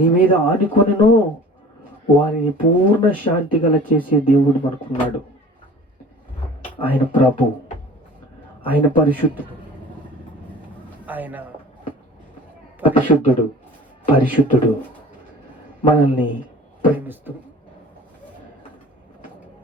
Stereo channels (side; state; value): both; normal; correlation 0.44